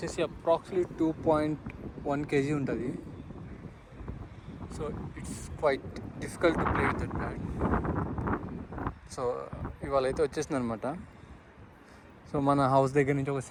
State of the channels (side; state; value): both; identical; correlation 1.00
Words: అప్రాక్సిమేట్లీ 2.1 kg ఉంటుంది. So it's quite difficult to play with that bat. So ఇవాళ అయితే వచ్చేసింది అనమాట. సో మన హౌస్ దగ్గర నుంచి ఒక